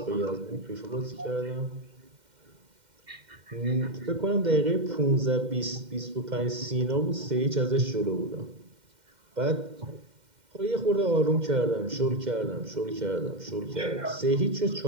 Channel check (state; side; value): late; left; 2.1 ms